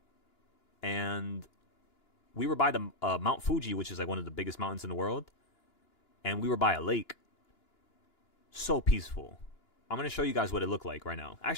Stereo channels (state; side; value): late; right; 2.9 ms